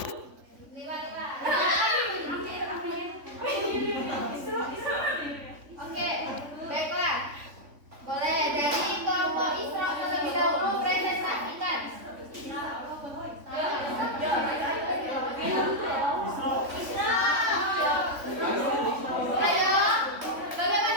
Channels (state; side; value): late; left; 3.5 ms